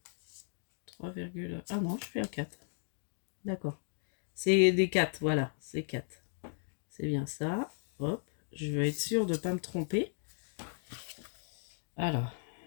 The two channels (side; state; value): right; silent; digital silence